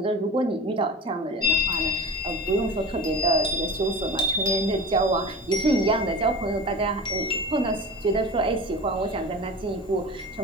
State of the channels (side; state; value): both; normal; correlation 0.32